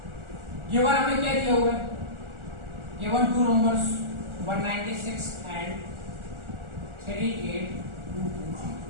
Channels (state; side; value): late; left; 1.4 ms